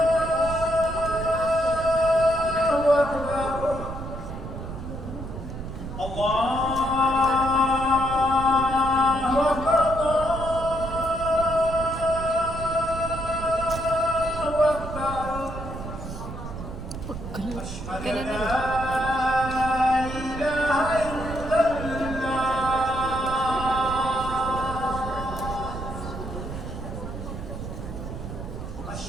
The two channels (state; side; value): noise; right; rumble, 8 dB below the sound